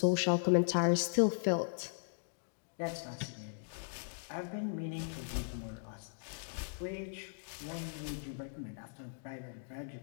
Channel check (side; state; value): right; silent; digital silence